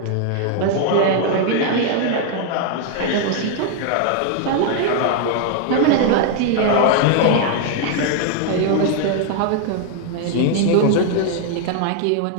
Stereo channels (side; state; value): both; different; correlation 0.00